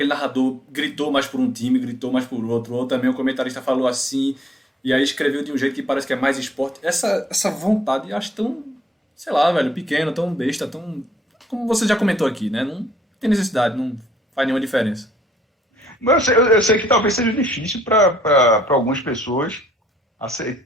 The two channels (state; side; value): normal; both; correlation 0.66